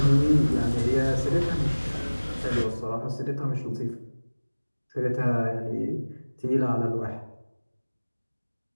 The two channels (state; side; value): inverted; both; correlation -1.00